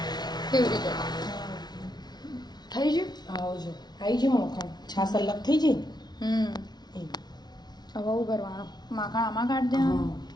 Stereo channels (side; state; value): right; late; 0.20 ms